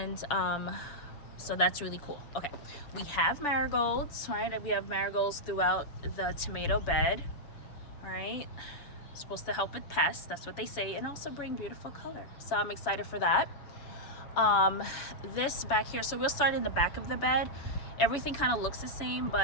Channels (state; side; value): late; right; 7.0 ms